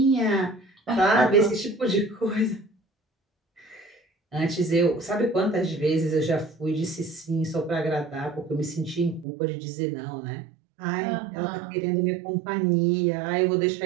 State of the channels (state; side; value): drops out; left; at 9.2 s